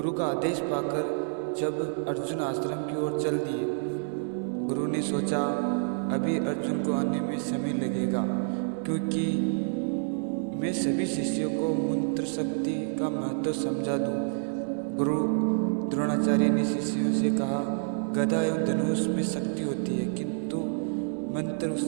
का आदेश पाकर जब अर्जुन आश्रम की ओर चल दिए, गुरु ने सोचा अभी अर्जुन को आने में समय लगेगा, क्योंकि मैं सभी शिष्यों को मंत्र शक्ति का महत्व समझा दूं। गुरु द्रोणाचार्य ने शिष्यों से कहा, गदा एवं धनुष में शक्ति होती है, किंतु मंत्र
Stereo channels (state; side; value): silent; left; digital silence